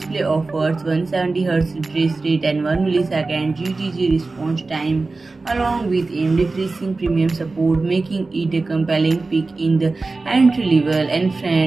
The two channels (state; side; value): quieter; left; 3.6 dB